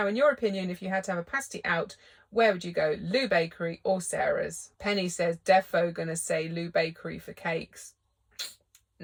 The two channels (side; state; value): both; identical; correlation 1.00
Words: in your opinion, if you had to have a pasty out, where would you go? Lou Bakery or Sarah's? Penny says, defo gonna say Lou Bakery for cakes.